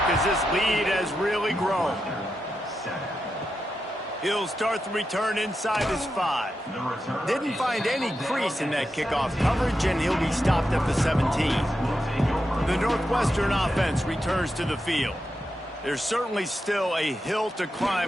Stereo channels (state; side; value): normal; both; correlation 0.87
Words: as this lead has really grown. He'll start the return inside his 5. Didn't find any crease in that kickoff coverage, and he'll be stopped at the 17. The Northwestern offense returns to the field. There's certainly still a hill to